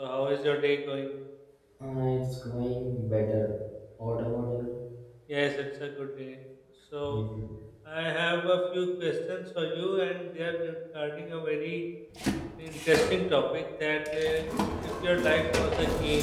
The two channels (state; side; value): identical; both; correlation 1.00